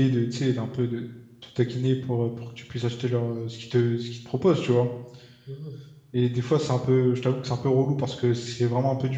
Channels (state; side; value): identical; both; correlation 1.00